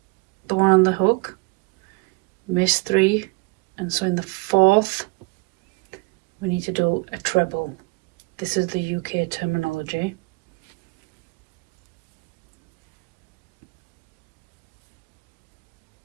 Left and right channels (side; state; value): left; quieter; 28.6 dB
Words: the one on the hook, miss 3, and so in the 4th we need to do a treble. This is the UK terminology.